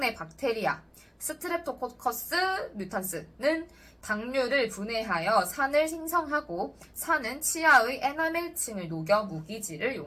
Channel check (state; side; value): identical; both; correlation 1.00